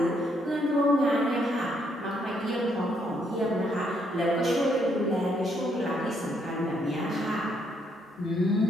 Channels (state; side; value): normal; both; correlation 0.72